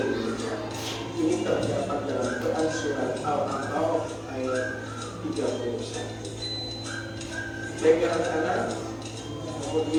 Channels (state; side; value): identical; both; correlation 1.00